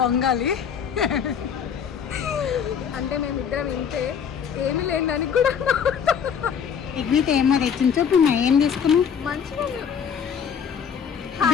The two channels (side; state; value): right; quieter; 7.3 dB